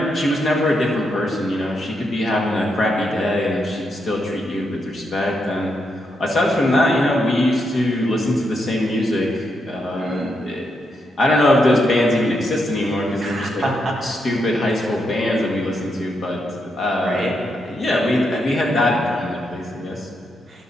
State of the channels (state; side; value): normal; both; correlation 0.81